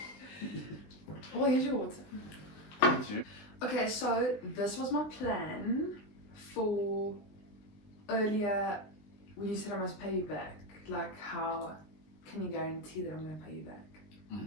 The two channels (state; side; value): late; right; 20 ms